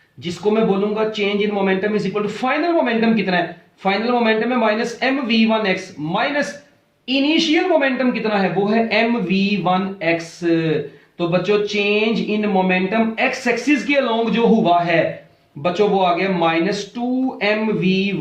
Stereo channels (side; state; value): both; identical; correlation 1.00